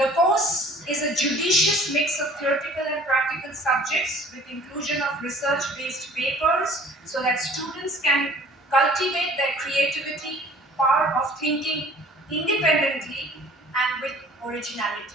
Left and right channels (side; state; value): both; normal; correlation 0.51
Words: course is a judicious mix of theoretical and practical subjects with inclusion of research-based papers so that students can cultivate their creativity, power of thinking independently and with